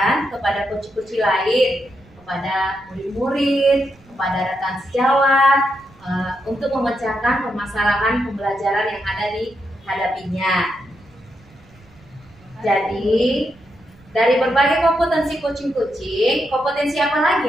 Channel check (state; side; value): noise; right; rumble, 27 dB below the sound